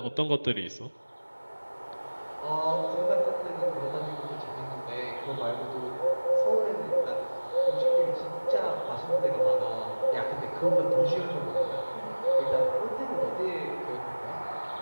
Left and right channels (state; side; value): inverted; both; correlation -1.00